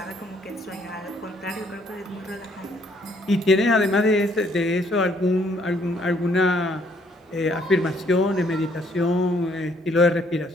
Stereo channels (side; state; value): both; normal; correlation 0.66